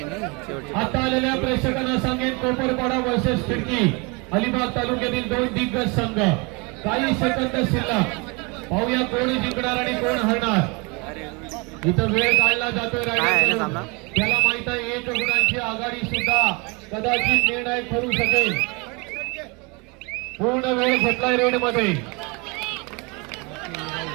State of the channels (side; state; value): left; quieter; 29.3 dB